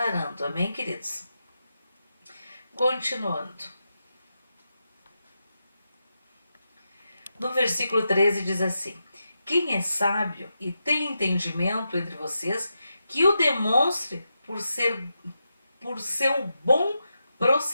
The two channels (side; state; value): both; inverted; correlation -0.87